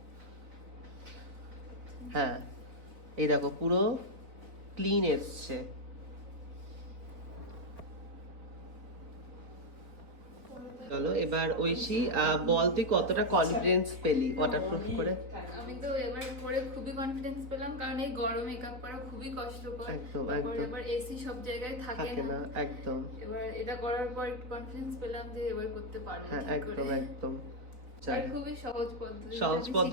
হ্যাঁ, এই দেখো পুরো ক্লিন এসছে। চলো এবার ঐশী বল, তুই কতটা কনফিডেন্স পেলি ওয়াটারপ্রুফ করে? আমি তো এবার পরে খুবই কনফিডেন্স পেলাম, কারণ এই গরম মেকআপ করা খুবই কষ্টকর। একদম তারপর একদম এবার এসি সব জায়গায় থাকে না। একদম। এবার এটা করার পর একটু কনফিডেন্স পেলাম যে এবার করতে পারবো। হ্যাঁ, একদম একদম। আর খুবই সহজ পদ্ধতি, সহজ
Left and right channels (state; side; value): late; left; 4.2 ms